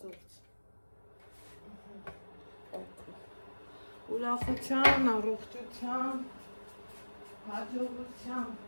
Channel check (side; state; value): both; inverted; correlation -1.00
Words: գործ, ուրախության, առողջության, հաջողության,